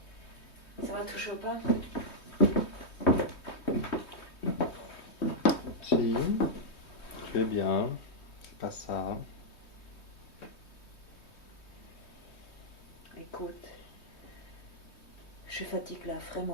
Ça va toujours pas? Si, tu es bien, c'est pas ça. Écoute, je fatigue là,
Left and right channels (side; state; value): right; late; 3.2 ms